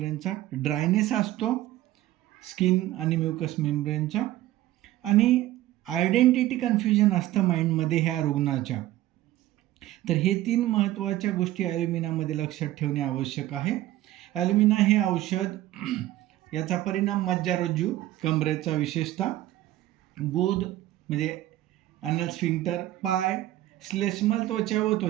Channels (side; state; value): left; quieter; 15.0 dB